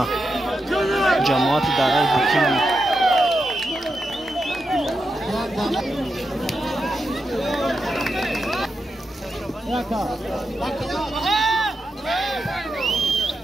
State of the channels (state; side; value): normal; both; correlation 0.87